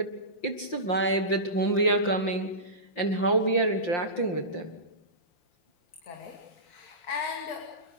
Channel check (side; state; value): right; late; 5.7 ms